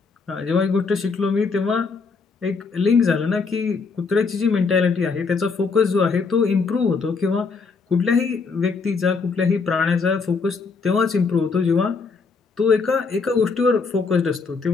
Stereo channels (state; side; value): quieter; right; 4.7 dB